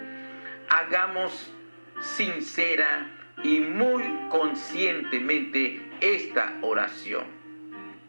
hagamos sincera y muy conscientemente esta oración.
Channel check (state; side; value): inverted; both; correlation -1.00